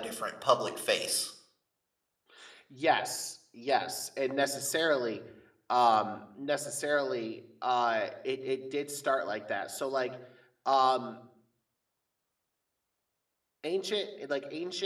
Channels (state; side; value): identical; both; correlation 1.00